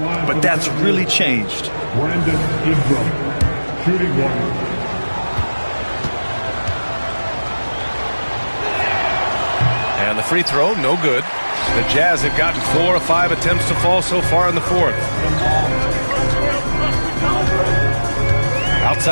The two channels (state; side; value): inverted; both; correlation -1.00